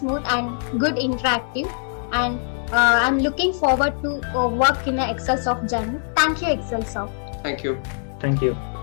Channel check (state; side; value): silent; right; 64 dB below the other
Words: and good interactive, and I'm looking forward to work in an Excelsoft journey. Thank you, Excelsoft. Thank you. Thank you.